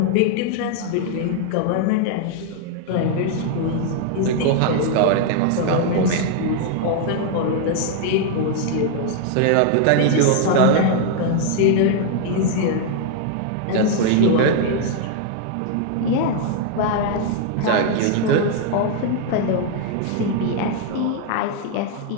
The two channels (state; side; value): different; both; correlation 0.00